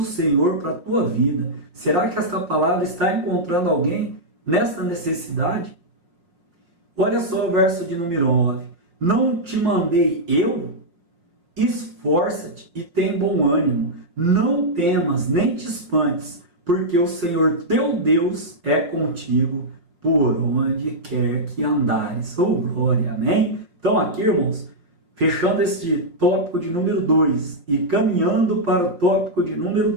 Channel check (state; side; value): late; left; 6.0 ms